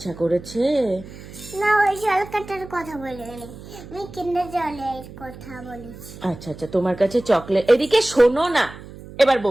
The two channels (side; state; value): right; noise; hum, 16 dB below the sound